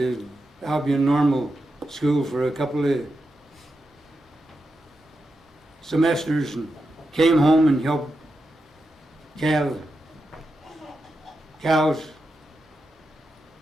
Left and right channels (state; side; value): normal; both; correlation 0.88